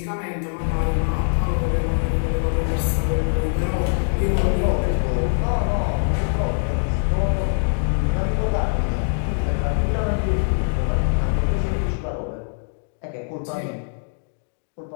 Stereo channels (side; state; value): right; silent; digital silence